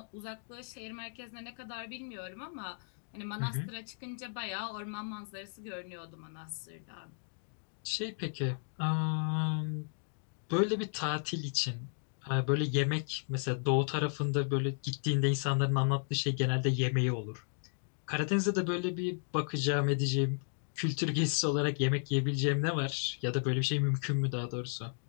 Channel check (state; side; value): silent; right; digital silence